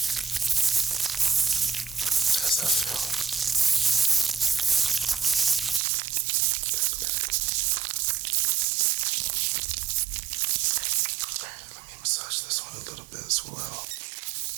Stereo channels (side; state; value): left; drops out; at 5.8 s